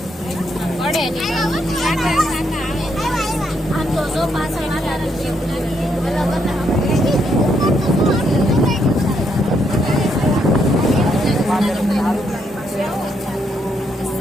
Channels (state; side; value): normal; both; correlation 0.76